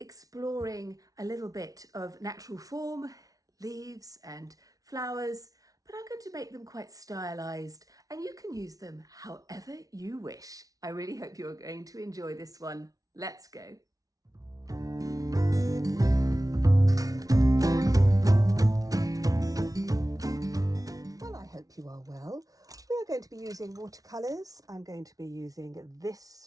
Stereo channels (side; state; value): left; late; 0.18 ms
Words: a little bit of natural form, leaves and flowers, but I'm going to make them quite stylized and you can use them however you wish. I really hope you're going to enjoy this one. Let's go. Well, I hope you are well. We are going to be using watercolours. I'm going to be using